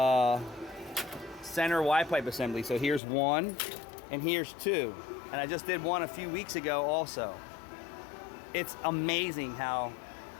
center Y pipe assembly. So here's one and here's two. And I just did one a few weeks ago also. It's amazing how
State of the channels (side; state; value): right; drops out; at 3.0 s